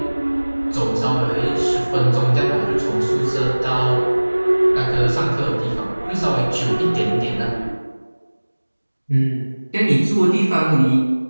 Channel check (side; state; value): both; inverted; correlation -1.00